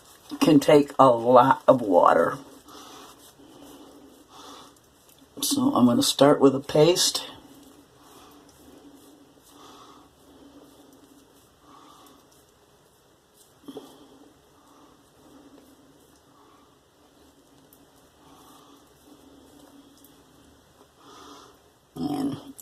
can take a lot of water. So I'm going to start with a paste. And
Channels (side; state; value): both; identical; correlation 1.00